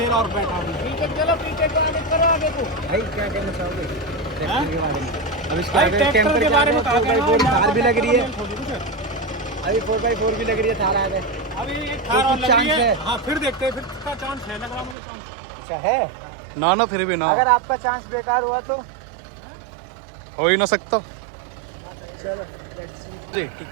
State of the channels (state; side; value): drops out; left; at 15.0 s